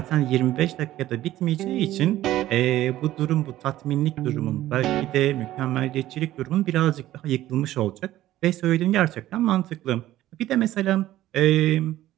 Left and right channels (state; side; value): quieter; left; 14.4 dB